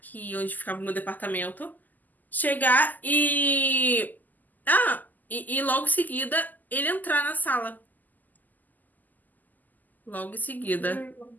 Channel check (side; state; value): right; late; 0.083 ms